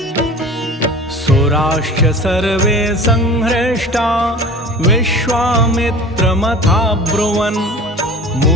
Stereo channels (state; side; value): normal; both; correlation 0.39